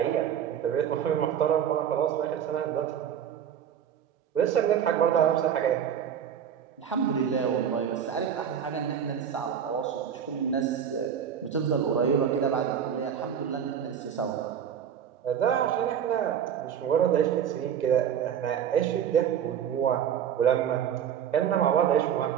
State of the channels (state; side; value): quieter; left; 8.7 dB